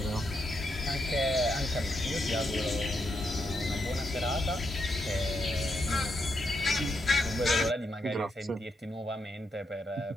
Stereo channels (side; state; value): both; normal; correlation 0.81